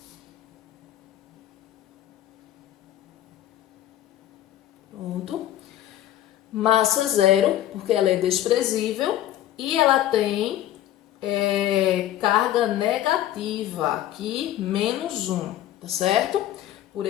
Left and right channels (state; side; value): quieter; right; 12.8 dB